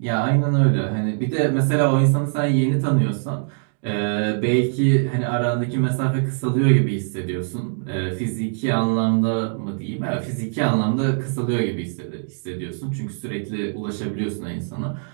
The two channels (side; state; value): left; silent; digital silence